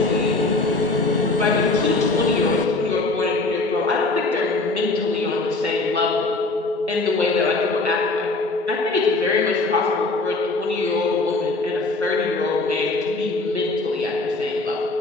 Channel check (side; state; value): right; quieter; 3.3 dB